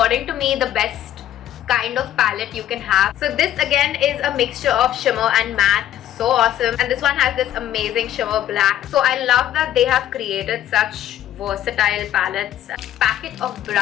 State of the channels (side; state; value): right; quieter; 11.9 dB